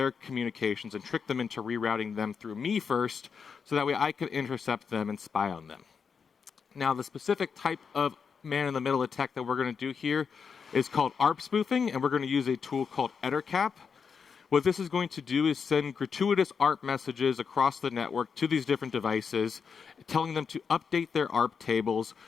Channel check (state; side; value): quieter; right; 6.1 dB